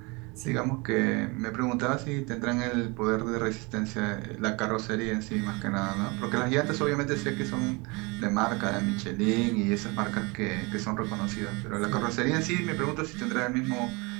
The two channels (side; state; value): left; quieter; 27.5 dB